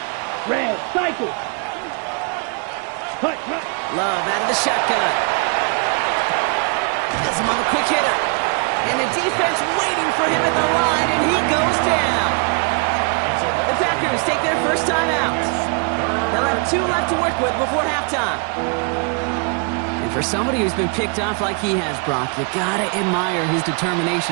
Red. Cycle. Hut. Love out of the shotgun. Has him on the quick hitter. And the defense waiting for him at the line, and he goes down. The Packers take their first time out. They'll have 2 left to work with before halftime. And for somebody who's been picked off like he has, Brock, you gotta admire his determination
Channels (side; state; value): left; quieter; 37.1 dB